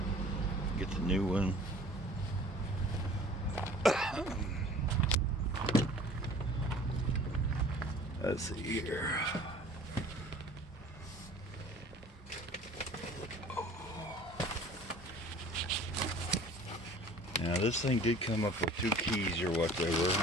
Get the new one. Let's see here. Now this thing did come up with 2 keys or whatever.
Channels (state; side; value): normal; both; correlation 0.48